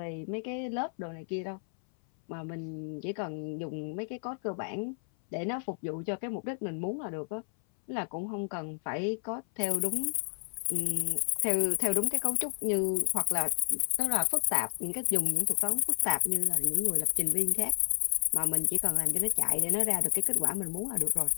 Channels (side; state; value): right; silent; 57 dB below the other